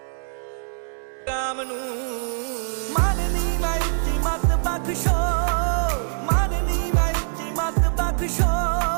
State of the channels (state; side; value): silent; left; 63 dB below the other